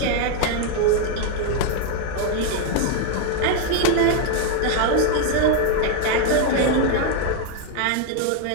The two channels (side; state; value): both; different; correlation 0.01